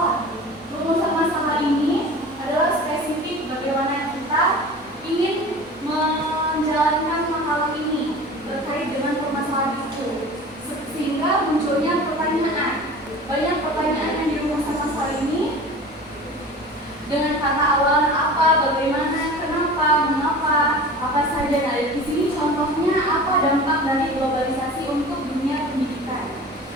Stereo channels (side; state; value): both; normal; correlation 0.38